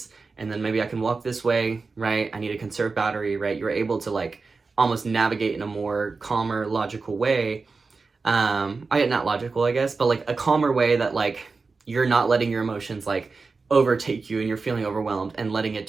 and then maybe I can walk this way, right? I need to conserve battery, right? You're able to like almost navigate in a more calmer, logical way. Not logical, I guess, but like a calmer way that like you're not letting your emotions like overtake you and you're feeling overwhelmed and letting it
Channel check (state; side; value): quieter; left; 4.3 dB